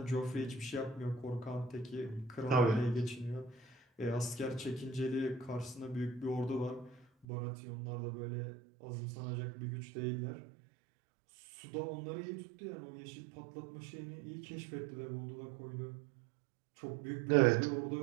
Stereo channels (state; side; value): drops out; left; at 7.2 s